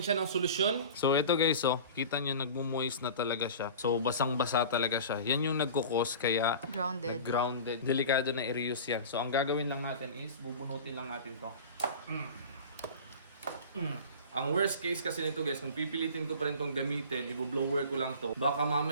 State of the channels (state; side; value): inverted; both; correlation -0.37